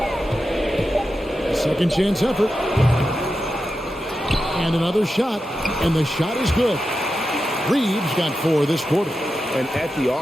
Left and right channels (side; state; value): both; normal; correlation 0.90